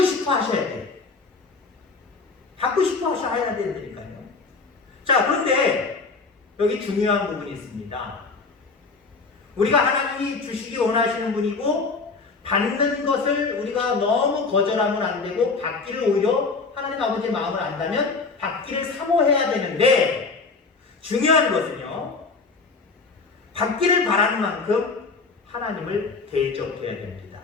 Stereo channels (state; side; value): quieter; right; 4.3 dB